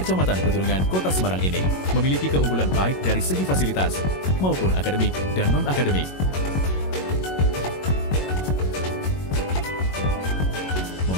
Petunungan, Kota Semarang ini memiliki keunggulan baik dari segi fasilitas maupun akademik dan non-akademik.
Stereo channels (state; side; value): late; right; 21 ms